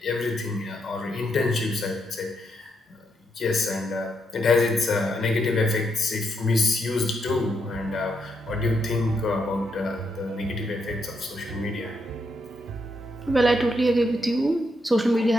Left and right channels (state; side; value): normal; both; correlation 0.79